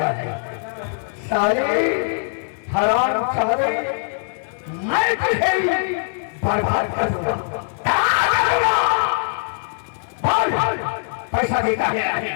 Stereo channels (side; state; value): right; silent; digital silence